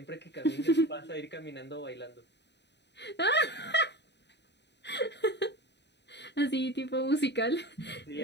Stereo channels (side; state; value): right; late; 0.50 ms